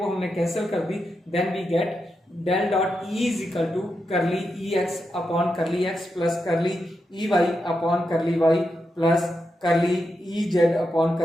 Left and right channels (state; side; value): normal; both; correlation 0.86